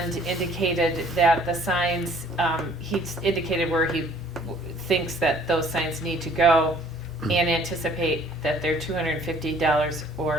indicated that the signs, he's indicated where he thinks that those signs need to go and anticipate that they're $250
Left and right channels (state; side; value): normal; both; correlation 0.56